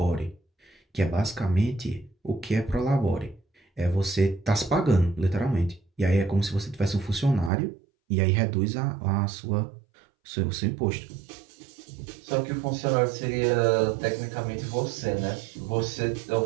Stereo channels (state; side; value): drops out; left; at 7.5 s